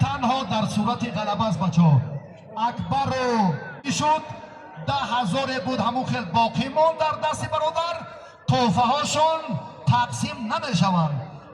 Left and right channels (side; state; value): both; identical; correlation 1.00